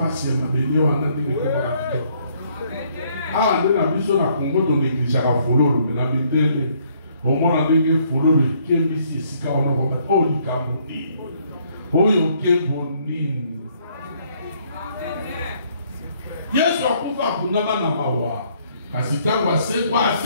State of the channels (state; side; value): inverted; both; correlation -0.66